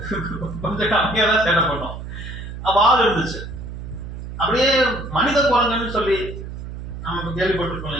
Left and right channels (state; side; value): noise; right; hum, 9 dB below the sound